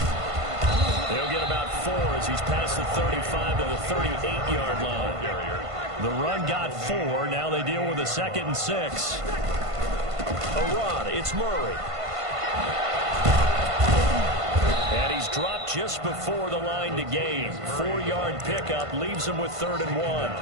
He'll get about 4 as he's past the 35 to the 38-yard line. The run got 4. Now they deal with a 2nd and 6. A run. It's Murray. And he's dropped just before the line to gain. 4-yard pickup leaves him with 3rd and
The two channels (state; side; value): late; left; 1.5 ms